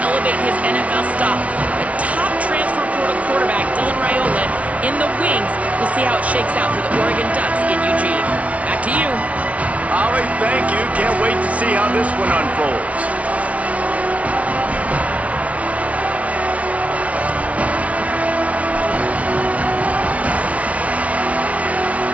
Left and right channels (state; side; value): late; left; 0.065 ms